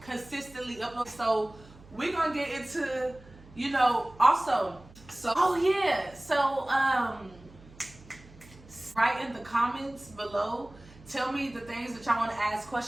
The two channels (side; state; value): right; noise; hum, 22 dB below the sound